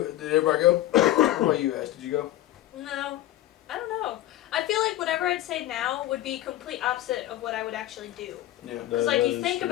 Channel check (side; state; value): right; quieter; 14.5 dB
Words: did everybody go? What about you guys? Did you go? No. I don't know. I feel like whatever I'd say now would be complete opposite of what I would actually do. Yeah. Because like you think